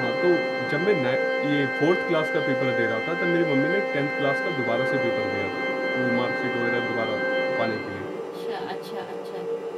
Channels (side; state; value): both; identical; correlation 1.00